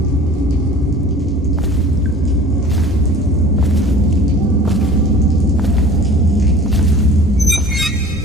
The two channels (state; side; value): normal; both; correlation 0.44